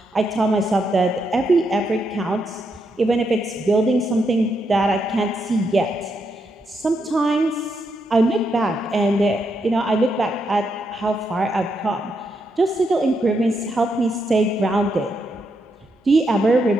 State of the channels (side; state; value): both; normal; correlation 0.81